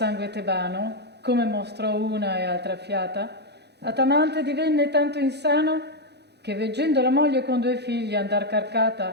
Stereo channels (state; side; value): late; left; 0.49 ms